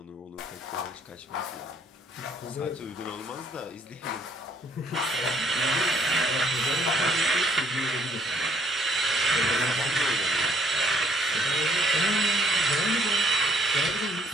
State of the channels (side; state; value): both; normal; correlation 0.64